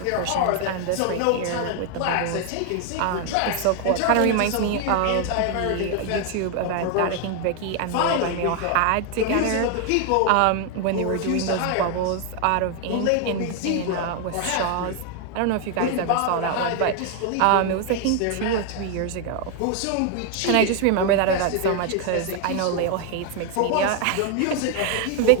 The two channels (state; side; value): different; both; correlation 0.00